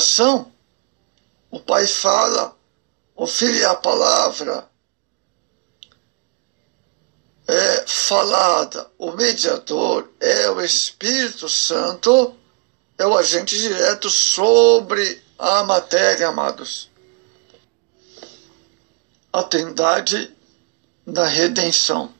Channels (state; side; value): quieter; left; 31.9 dB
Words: o Pai fala, o Filho é a palavra é falada, o mediador é o Espírito Santo, é o agente direto sobre a matéria, amados. A Trindade da redenção.